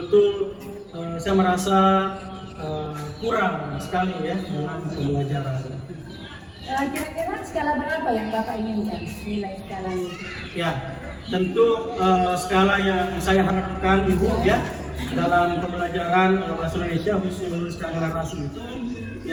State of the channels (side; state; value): both; identical; correlation 1.00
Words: saya merasa kurang sekali ya dalam pembelajaran. Kira-kira skala berapa yang Bapak inginkan nilai skalanya? Ya, tentu skala yang saya harapkan Ibu ya dalam pembelajaran bahasa Indonesia khususnya skala narasi itu